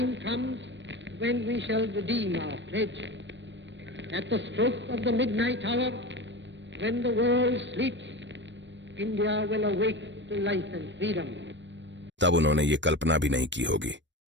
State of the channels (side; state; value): left; late; 0.53 ms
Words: comes when we shall redeem our pledge. At the stroke of the midnight hour, when the world sleeps, India will awake to life and freedom. तब उन्होंने ये कल्पना भी नहीं की होगी